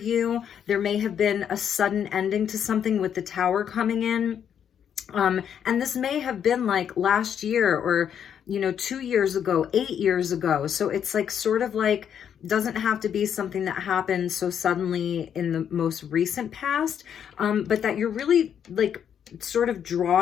There may have been a sudden ending to something with the Tower coming in. And this may have been like last year or, 2 years ago, 8 years ago. So it's like sort of like, doesn't have to be something that happened so suddenly in the most recent past, but that you're really like sort of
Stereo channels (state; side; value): quieter; right; 8.6 dB